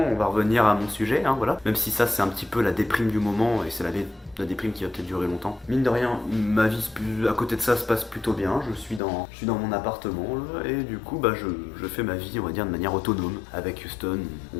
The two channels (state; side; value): drops out; right; at 9.0 s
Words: on va revenir à mon sujet, hein, voilà. Même si ça, c'est un petit peu la déprime du moment, et c'est la déprime qui va peut-être durer longtemps. Mine de rien, ma vie à côté de ça se passe plutôt bien. Je suis dans mon appartement là, et du coup bah je fais ma vie, on va dire, de manière autonome. Avec Houston,